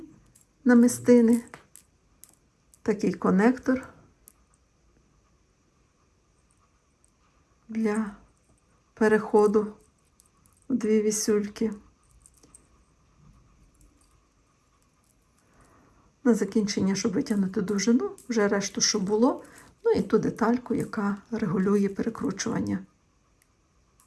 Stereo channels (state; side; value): identical; both; correlation 1.00